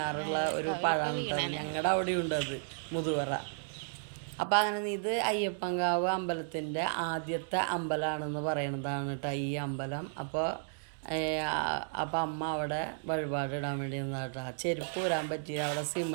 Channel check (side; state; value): left; silent; digital silence